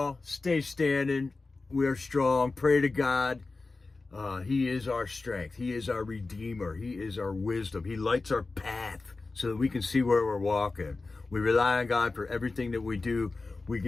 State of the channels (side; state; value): right; quieter; 3.7 dB